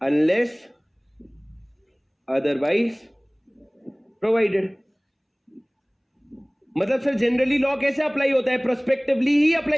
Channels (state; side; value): identical; both; correlation 1.00